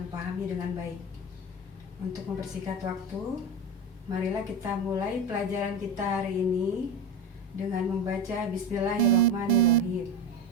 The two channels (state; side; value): normal; both; correlation 0.20